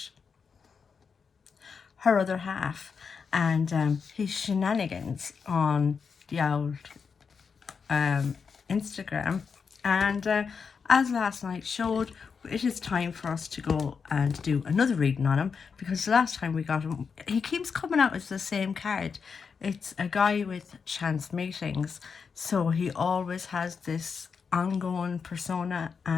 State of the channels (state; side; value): quieter; right; 5.8 dB